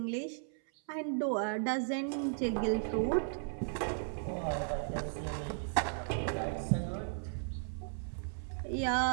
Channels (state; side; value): silent; left; 54 dB below the other